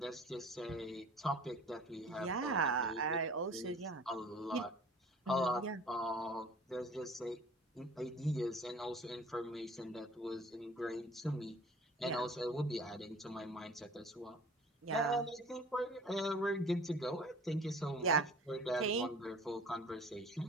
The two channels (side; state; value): both; normal; correlation 0.47